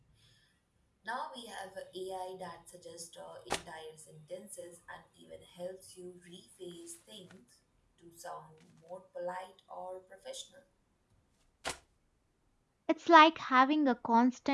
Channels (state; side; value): identical; both; correlation 1.00